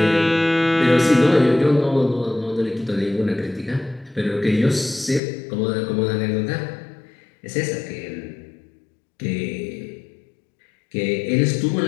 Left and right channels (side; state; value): right; drops out; at 5.2 s